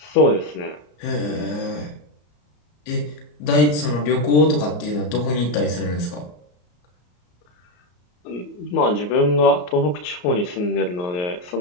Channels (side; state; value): right; late; 34 ms